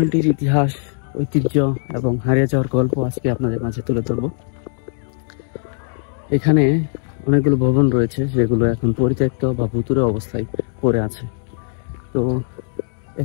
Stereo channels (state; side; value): silent; right; 66 dB below the other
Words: ইতিহাস, ঐতিহ্য এবং হারিয়ে যাওয়ার গল্প আজকে আপনাদের মাঝে তুলে ধরব। এখানে অনেকগুলো ভবন রয়েছে যেগুলো এখন পরিত্যক্ত বা ভুতুড়ে অবস্থায় পড়ে আছে। তো